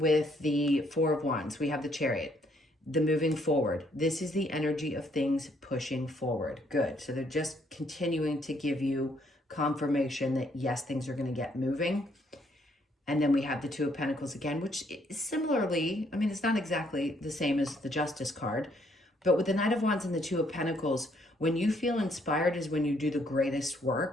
the Four of Wands. We have the Chariot, the moving forward. This is the energy of things pushing forward. Good. So they're just continuing to give you confirmation that yes, things are going to get moving. And then we have the Two of Pentacles again, which is similarly, I mean, it's not exactly the same as the Justice card, but with the Knight of Wands and the Two of Pentacles, when you feel inspired is when you do the greatest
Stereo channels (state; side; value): normal; both; correlation 0.69